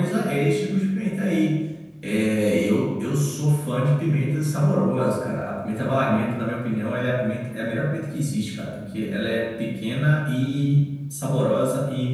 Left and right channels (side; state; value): both; identical; correlation 1.00